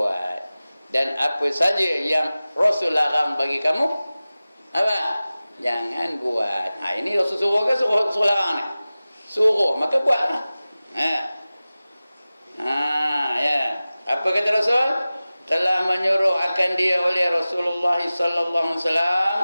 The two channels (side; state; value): both; inverted; correlation -0.97